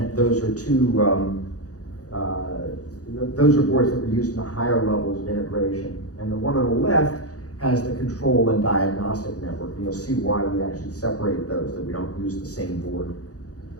Those are those are boards that were used in the higher levels of integration. And the one on the left has the control and diagnostic network. And you'll see why we actually separate those, that we don't use the same board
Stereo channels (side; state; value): right; late; 0.67 ms